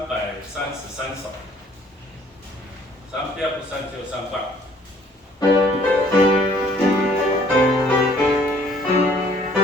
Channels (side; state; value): both; normal; correlation 0.59